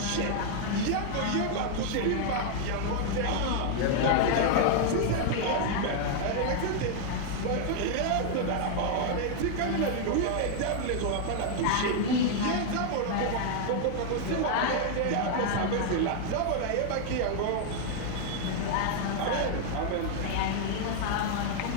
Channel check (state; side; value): different; both; correlation 0.00